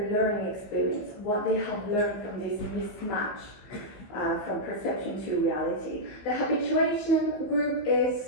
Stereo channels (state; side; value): late; right; 15 ms